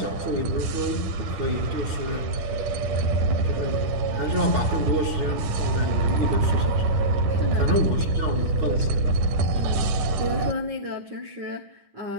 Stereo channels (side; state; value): left; late; 9.9 ms